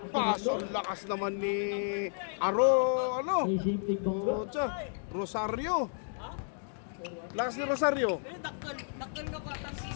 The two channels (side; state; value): right; silent; digital silence